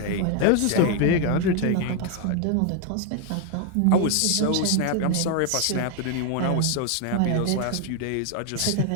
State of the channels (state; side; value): different; both; correlation 0.00